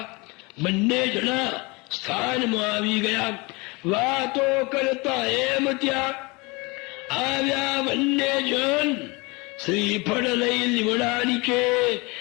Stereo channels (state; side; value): quieter; right; 26.4 dB